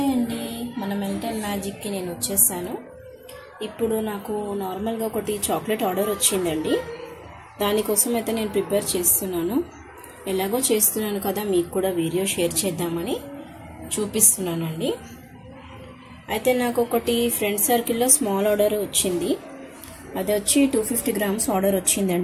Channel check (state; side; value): identical; both; correlation 1.00